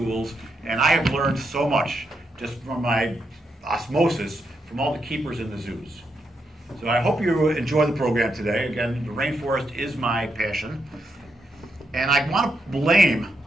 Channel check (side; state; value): both; normal; correlation 0.81